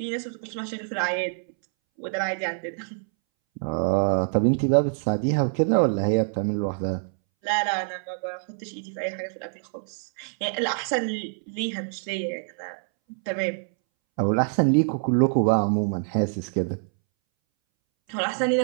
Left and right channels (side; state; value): left; silent; 61 dB below the other